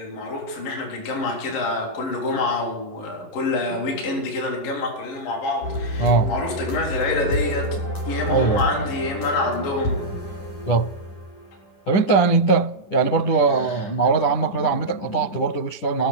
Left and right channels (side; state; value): right; late; 10 ms